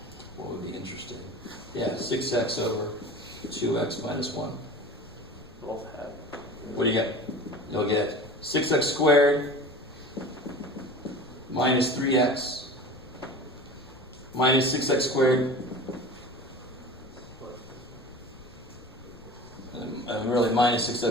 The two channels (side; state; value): left; noise; rumble, 22 dB below the sound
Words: What would be interesting? Yeah, 6x over 2x minus 1. Both have. What do you get? You'll get 6x squared minus 3x minus 6x squared. And really minus